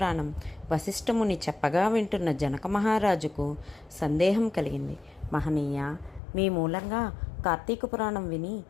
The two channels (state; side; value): drops out; right; at 6.2 s